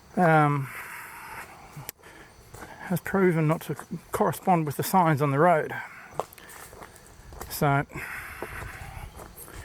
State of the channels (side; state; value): both; identical; correlation 1.00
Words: has proven not to correspond with the signs on the road. So I